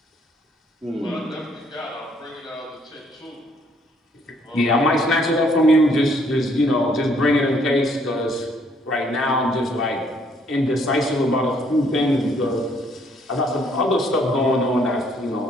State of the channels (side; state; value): both; normal; correlation 0.66